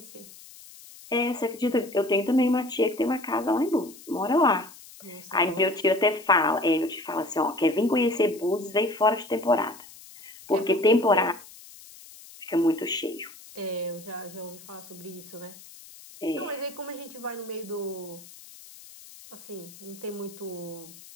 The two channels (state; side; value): noise; left; hiss, 19 dB below the sound